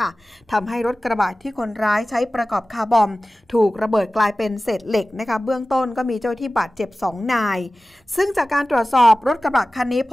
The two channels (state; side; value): normal; both; correlation 0.96